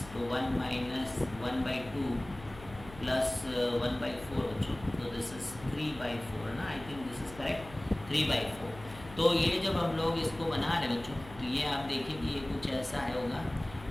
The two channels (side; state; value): left; noise; hum, 17 dB below the sound